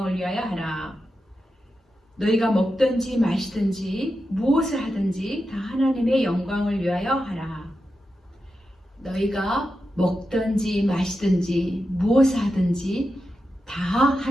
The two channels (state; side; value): normal; both; correlation 0.89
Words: 위하여 하라. 너희가 먹든지 마시든지 무엇을 하든지 다 하나님의 영광을 위하여 하라. 너희가 먹든지 마시든지 무엇을 하든지 다